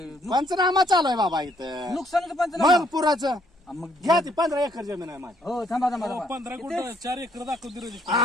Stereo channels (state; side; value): normal; both; correlation 0.69